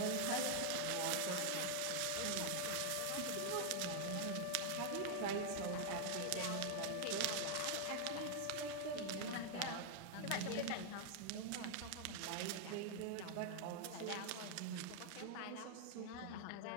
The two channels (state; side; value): different; both; correlation 0.00